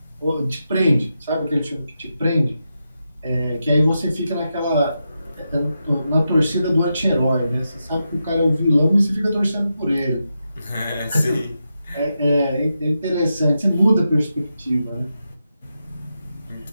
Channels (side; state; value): both; inverted; correlation -0.87